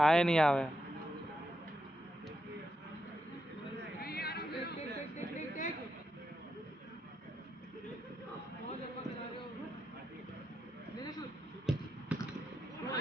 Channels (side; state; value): both; normal; correlation 0.84